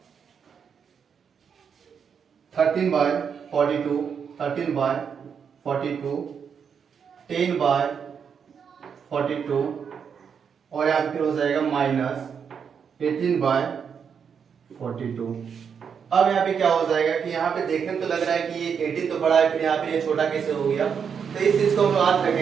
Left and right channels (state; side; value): quieter; left; 6.9 dB